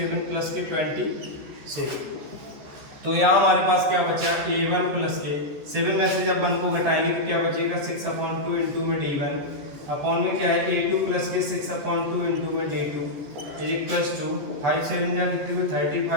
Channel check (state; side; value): late; left; 14 ms